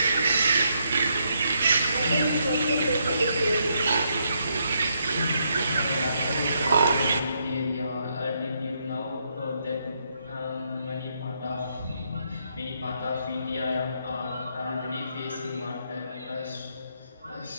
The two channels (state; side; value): inverted; both; correlation -0.76